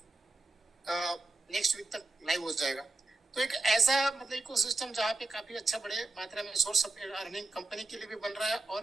नेक्स्ट वीक तक लाइव हो जाएगा। तो एक ऐसा मतलब इकोसिस्टम जहाँ पे काफी अच्छा बड़े मात्रा में सोर्स ऑफ अर्निंग कंपनी के लिए भी बन रहा है और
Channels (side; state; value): left; quieter; 3.2 dB